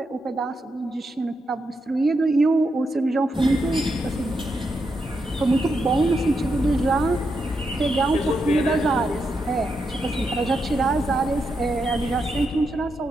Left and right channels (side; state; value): both; normal; correlation 0.83